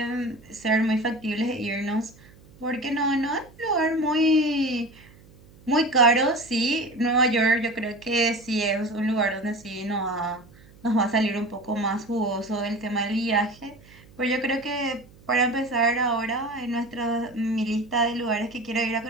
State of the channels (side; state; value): right; noise; hum, 25 dB below the sound